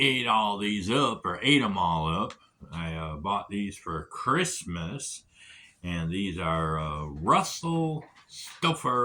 all these up or ate them all up, I bought these for Christmas, and these are Russell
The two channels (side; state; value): both; identical; correlation 1.00